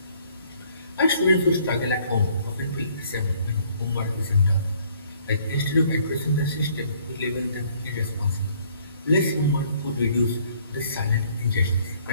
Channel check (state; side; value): inverted; both; correlation -0.62